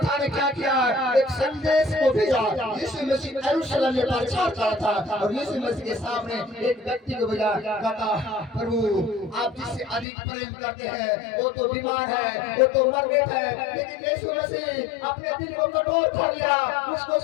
ने क्या किया, एक संदेश को भेजा। यीशु मसीह यरूशलेम में प्रचार कर रहा था और यीशु मसीह के सामने एक व्यक्ति को भेजा, कहता प्रभु आप जिससे अधिक प्रेम करते हैं वो तो बीमार है, वो तो मर गया है। लेकिन यीशु मसीह अपने दिल को कठोर कर लिया, उसको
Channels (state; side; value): drops out; right; at 10.1 s